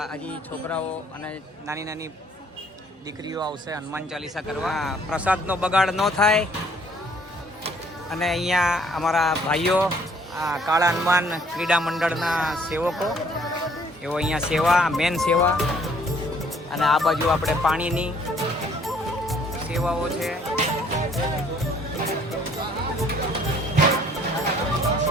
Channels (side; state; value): both; normal; correlation 0.60